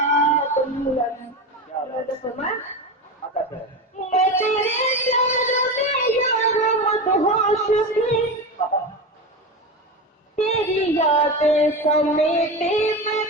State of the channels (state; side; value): normal; both; correlation 0.22